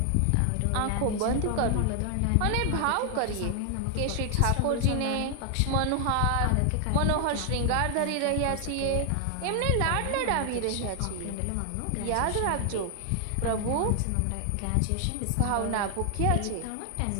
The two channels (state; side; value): different; both; correlation 0.00